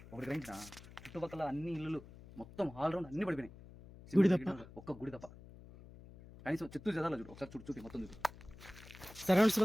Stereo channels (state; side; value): noise; left; hum, 18 dB below the sound